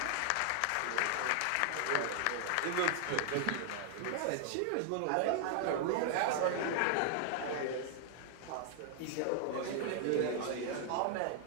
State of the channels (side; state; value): both; different; correlation 0.00